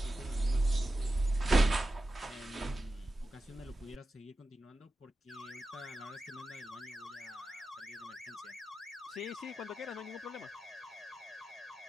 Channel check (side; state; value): both; normal; correlation 0.92